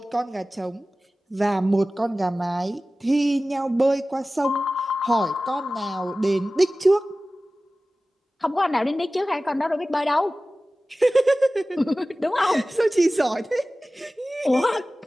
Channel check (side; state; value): both; normal; correlation 0.97